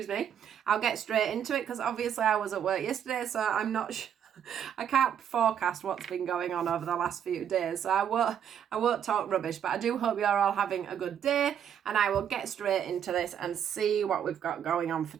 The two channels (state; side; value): quieter; left; 8.9 dB